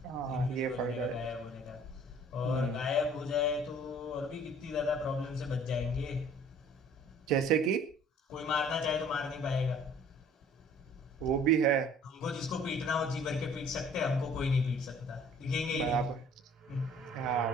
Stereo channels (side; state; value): both; normal; correlation 0.53